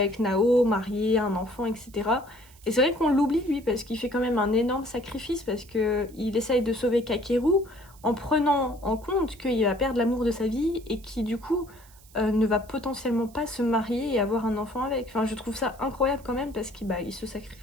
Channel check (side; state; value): right; noise; hiss, 25 dB below the sound